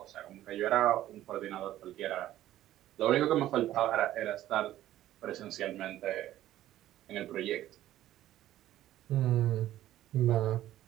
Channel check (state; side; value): quieter; left; 13.6 dB